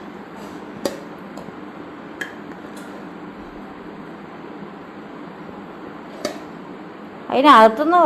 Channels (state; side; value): identical; both; correlation 1.00